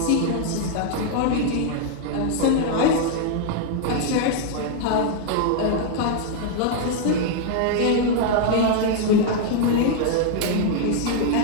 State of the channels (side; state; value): both; different; correlation 0.00